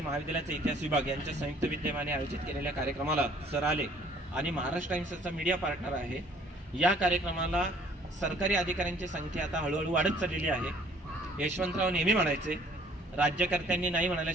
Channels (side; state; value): both; normal; correlation 0.57